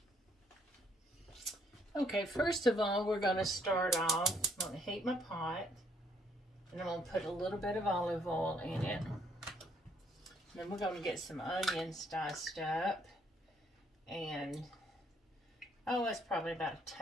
Okay, first of all, we're going to start off. I'm going to heat my pot, and I'm going to put a little bit of olive oil in it. Then we're going to get some onions diced up, and that's probably about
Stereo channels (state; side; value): normal; both; correlation 0.67